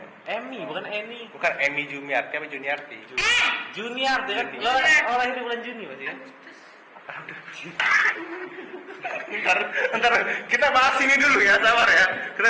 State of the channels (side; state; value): both; identical; correlation 1.00